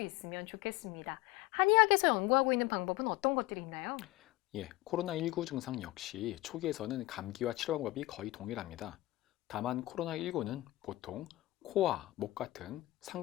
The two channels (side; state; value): right; quieter; 18.5 dB